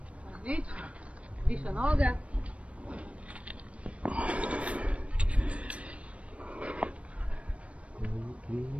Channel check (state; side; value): late; left; 0.063 ms